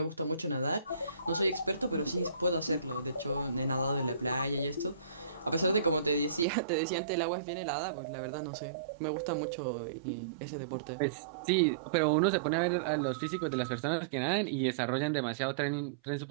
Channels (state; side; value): drops out; left; at 6.5 s